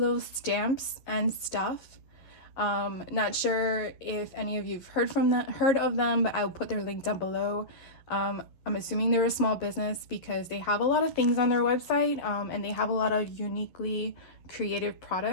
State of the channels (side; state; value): right; late; 11 ms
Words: Stamps and Stuff. Not sure if any of you've heard of them, but I'll put their link down below. I'm assuming they're a small business because they have a lot of things on their website, and they have a lot of uniquely creative